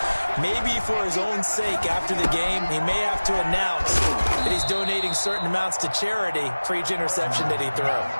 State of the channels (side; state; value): both; inverted; correlation -1.00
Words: Maybe for his own sake after the game, he may have to announce that he's donating certain amounts to charity for each interception that he throws.